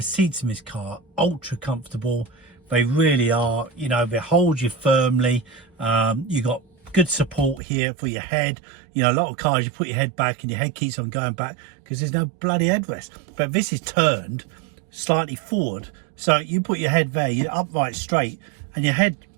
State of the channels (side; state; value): left; drops out; at 7.6 s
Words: seats in this car, ultra comfortable. They really are, you know, they hold you firmly. You got good support here for your head. You know, a lot of cars you put your head back and your head keeps on going back because there's no bloody headrest, but this is turned slightly forward, so you put your head there, you're upright straight, and your head